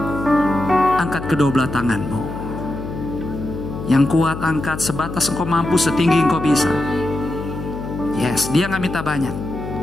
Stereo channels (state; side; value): noise; left; hum, 8 dB below the sound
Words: angkat kedua belah tanganmu. Yang kuat angkat sebatas engkau mampu, setinggi engkau bisa. Yes, dia gak minta banyak.